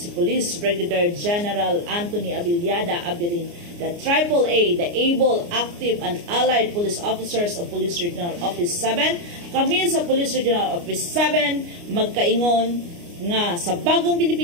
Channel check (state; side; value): late; left; 29 ms